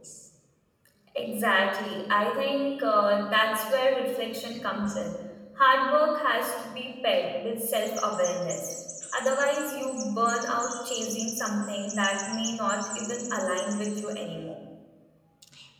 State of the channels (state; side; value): identical; both; correlation 1.00